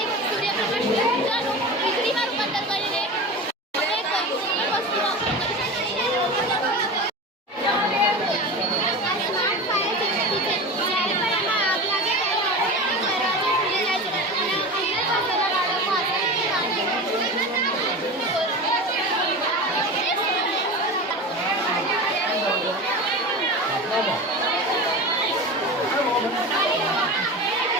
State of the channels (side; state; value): both; normal; correlation 0.29